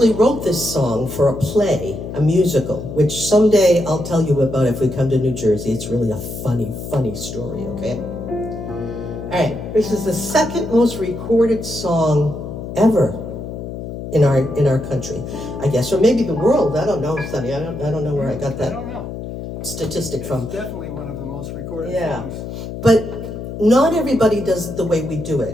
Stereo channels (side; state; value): left; noise; hum, 8 dB below the sound